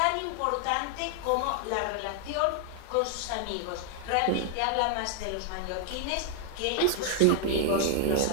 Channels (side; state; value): both; different; correlation 0.00